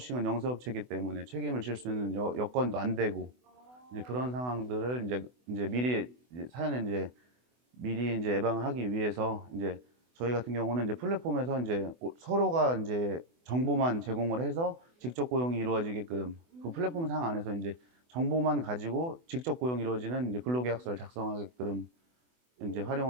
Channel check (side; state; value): left; late; 24 ms